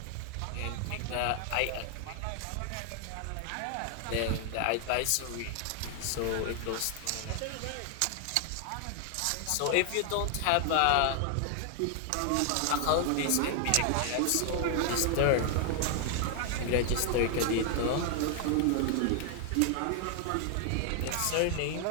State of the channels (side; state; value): both; different; correlation 0.00